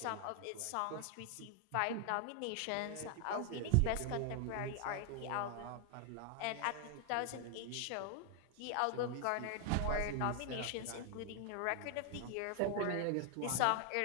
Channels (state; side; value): different; both; correlation 0.00